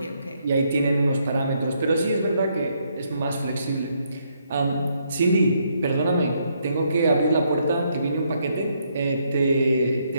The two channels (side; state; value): both; inverted; correlation -0.74